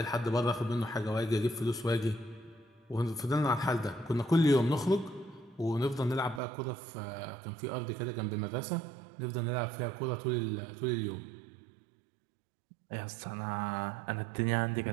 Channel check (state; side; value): drops out; left; at 6.4 s